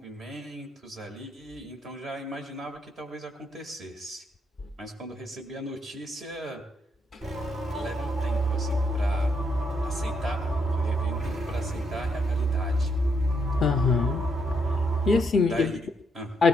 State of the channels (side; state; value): both; normal; correlation 0.76